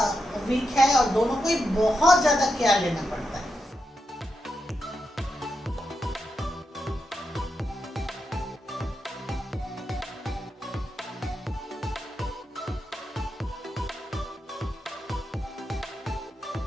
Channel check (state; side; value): normal; both; correlation 0.86